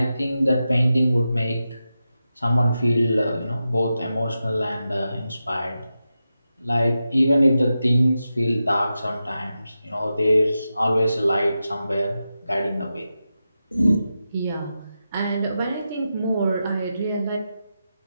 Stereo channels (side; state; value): both; inverted; correlation -0.90